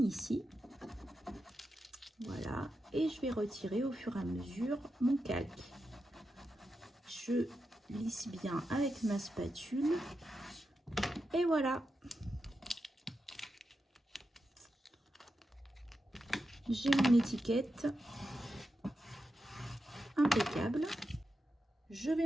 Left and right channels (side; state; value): both; normal; correlation 0.88